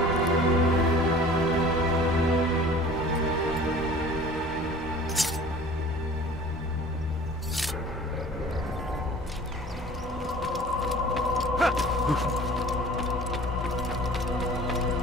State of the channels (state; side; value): normal; both; correlation 0.45